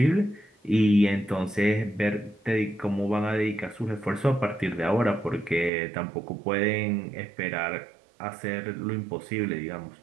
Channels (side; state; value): left; drops out; at 5.7 s